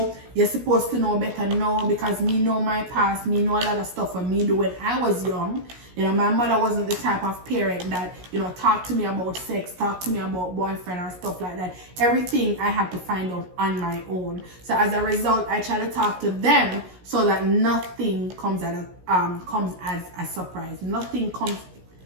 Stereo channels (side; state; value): left; late; 17 ms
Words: you're supposed to know better. No, because me know my past, me know a lot of stuff for me do when I was young. You know, my mother wasn't the type of parent that, you know, talk to me about sex, talk to me about boyfriend or stuff like that. Everything I had to find out on my own. So as a result, I try to talk to them so that nothing comes as a surprise. Nothing comes